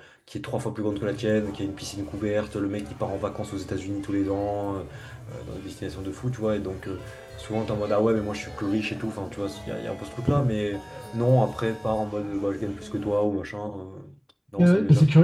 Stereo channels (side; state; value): both; identical; correlation 1.00